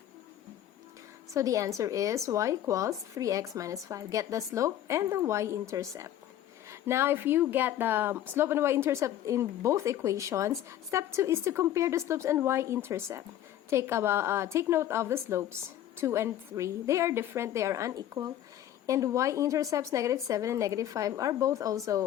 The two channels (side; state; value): right; quieter; 11.9 dB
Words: So the answer is y equals 3x minus 5. Get the slope and the y-intercept. Now, if you get the slope and y-intercept in both equations, step 2 is to compare the slopes and y-intercept. Take note of the slopes, 2 and 3. They are different, they are unequal. And y-intercepts, negative 7 and negative 5, are both